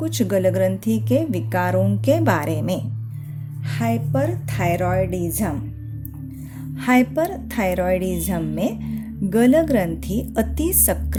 गलग्रंथि के विकारों के बारे में। हाइपरथायरॉयडिज्म। हाइपरथायरॉयडिज्म में गलग्रंथि अति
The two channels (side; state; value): both; identical; correlation 1.00